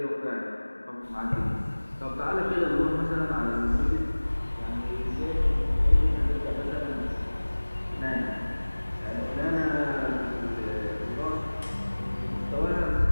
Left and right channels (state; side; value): inverted; both; correlation -1.00